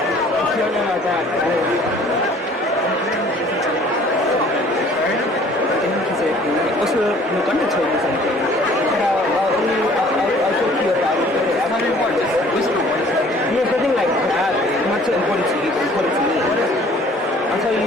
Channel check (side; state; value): both; normal; correlation 0.54